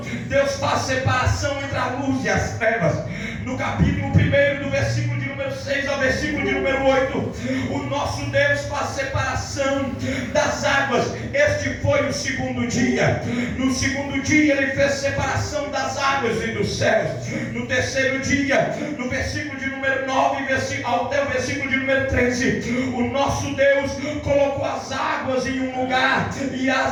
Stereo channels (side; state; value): both; identical; correlation 1.00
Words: Deus faz separação entre a luz e as trevas. No capítulo 1, do versículo de número 6 ao versículo de número 8, o nosso Deus faz separação das águas. Este foi o segundo dia. No segundo dia Ele fez separação das águas e dos céus. No terceiro dia, no versículo de número 9 até o versículo de número 13, o nosso Deus colocou as águas em um lugar e